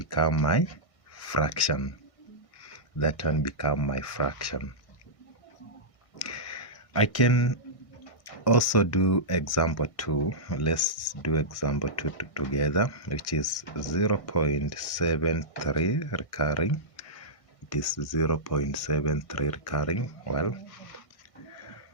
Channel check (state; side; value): late; right; 1.6 ms